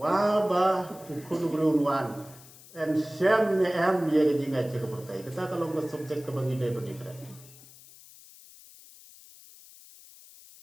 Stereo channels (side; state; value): left; noise; hiss, 21 dB below the sound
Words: ukun berunwan and syam ne am ye jinga cek pertai kita kalau nggak subjek ke bangidai berdikrat